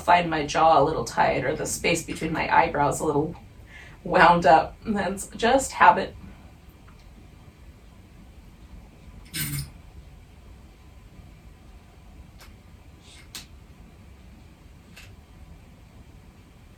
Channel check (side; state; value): both; identical; correlation 1.00